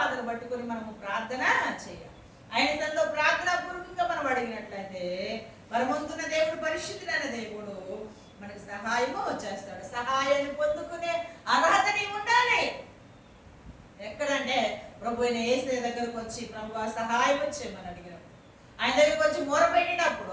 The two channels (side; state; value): both; identical; correlation 1.00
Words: పట్టుకొని మనము ప్రార్థన చేయాలి. ఆయన తనలో ప్రార్థన పూర్వకంగా మనం అడిగినట్లయితే పరమంతున్న దేవుడు, పరిశుద్ధుడైన దేవుడు మనకు సహాయము చేస్తాడు. సహాయాన్ని పొందుకునే అర్హత నీవు ఉండాలి. ఎక్కడంటే ప్రభు అయిన యేసు దగ్గరకు వచ్చి ప్రభు సహాయం వచ్చేయమని అడిగినప్పుడు, ఆయన దగ్గరకు వచ్చి మొరపెట్టినప్పుడు,